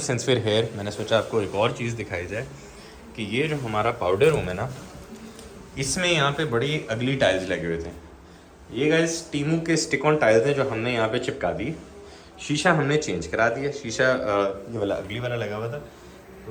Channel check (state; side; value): identical; both; correlation 1.00